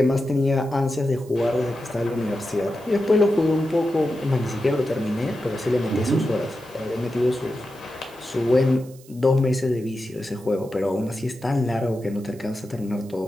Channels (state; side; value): noise; right; hiss, 24 dB below the sound